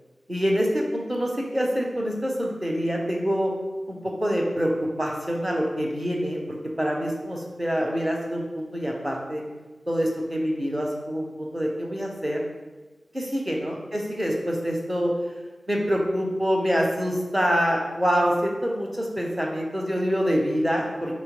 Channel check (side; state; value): both; normal; correlation 0.96